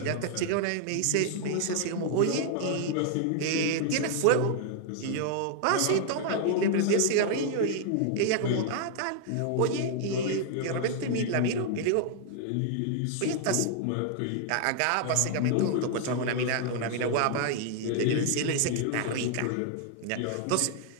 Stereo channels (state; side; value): different; both; correlation 0.00